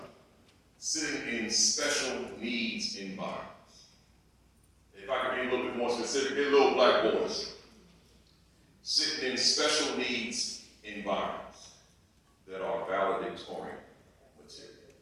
sitting in special needs environments. If I could be a little bit more specific, they're little black boys sitting in special needs environments that are valedictorian material.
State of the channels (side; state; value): both; identical; correlation 1.00